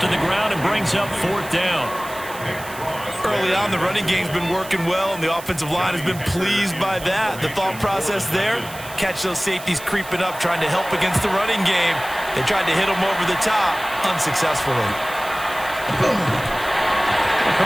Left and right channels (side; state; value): right; noise; hiss, 15 dB below the sound